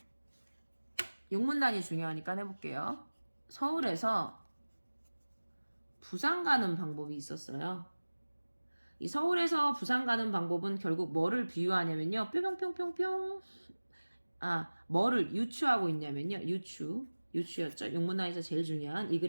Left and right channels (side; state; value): both; inverted; correlation -1.00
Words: 용문단이 중요하니까 해볼게요. 서울에서 부산 가는 방법이 있었어요. 이 서울에서 부산 가는 방법은 결국 뭐를 비유하냐면요. 뿅뿅뿅뿅뿅. 뭐를 유추하고 있냐면요. 유추였죠. 용문단에서 제일 중요한, 이